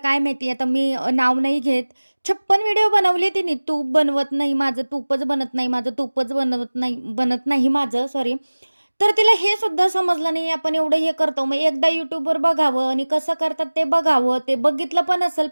काय माहिती आता मी नाव नाही घेत. 56 व्हिडिओ बनवले तिने. तूप बनवत नाही माझं, तूपच बनत नाही माझं, तूपच बनत नाही माझं सॉरी. तर तिला हे सुद्धा समजलं नाही आपण एवढं हे करतो. मग एकदा YouTubeवर बघावं आणि कसं करतात ते बघावं. ते बघितलं पण असेल,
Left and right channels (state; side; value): inverted; both; correlation -1.00